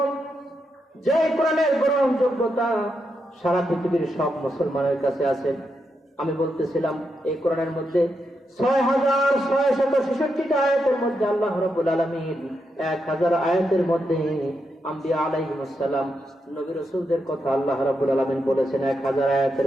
যে কোরআনের গ্রহণযোগ্যতা সারা পৃথিবীর সব মুসলমানের কাছে আছে। আমি বলতেছিলাম এই কোরআনের মধ্যে 6666টা আয়াতের মধ্যে আল্লাহ রাব্বুল আলামিন 1000 আয়াতের মধ্যে আম্বিয়া আলাইহিস সালাম নবী রাসূলদের কথা আল্লাহ রাব্বুল আলামিন বলেছেন 1000 আয়াতের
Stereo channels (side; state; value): both; normal; correlation 0.84